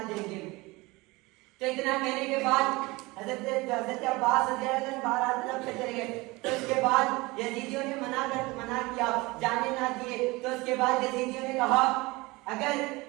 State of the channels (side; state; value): left; quieter; 22.7 dB